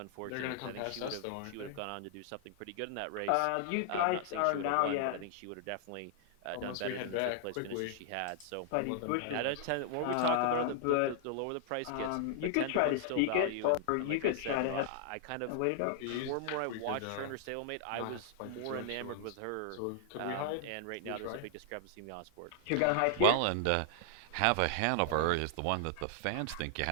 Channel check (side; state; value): both; different; correlation -0.01